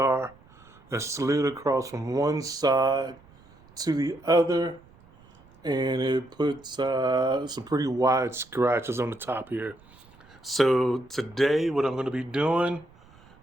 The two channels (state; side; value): noise; right; rumble, 27 dB below the sound